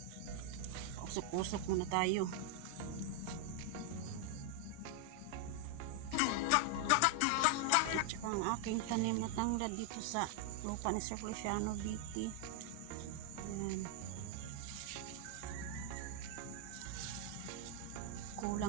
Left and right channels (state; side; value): different; both; correlation 0.00